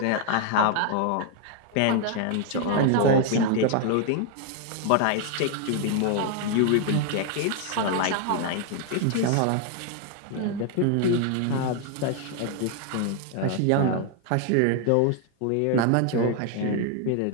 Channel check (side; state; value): both; different; correlation 0.00